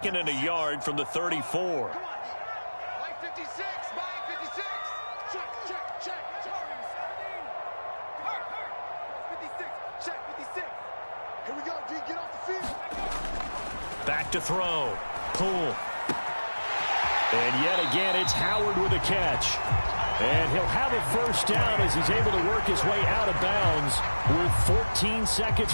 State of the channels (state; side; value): inverted; both; correlation -1.00